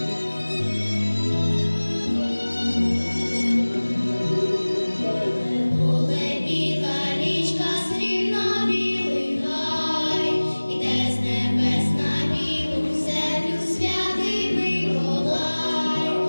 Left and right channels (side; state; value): both; inverted; correlation -1.00